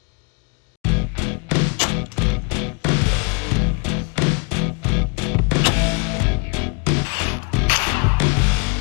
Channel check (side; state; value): right; quieter; 35.3 dB